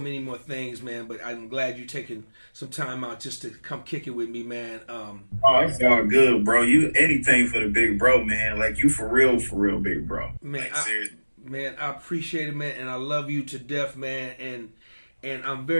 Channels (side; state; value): both; inverted; correlation -1.00